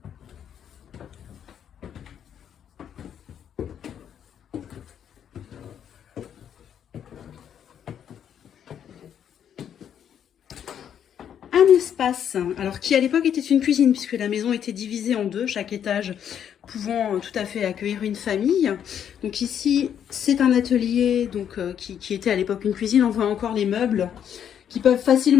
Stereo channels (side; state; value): right; quieter; 9.0 dB